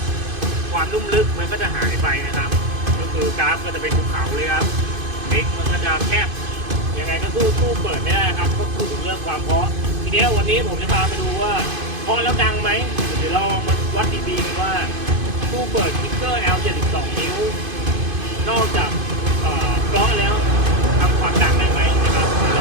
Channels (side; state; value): left; late; 2.5 ms